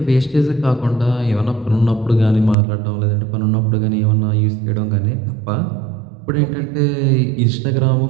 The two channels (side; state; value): left; drops out; at 2.6 s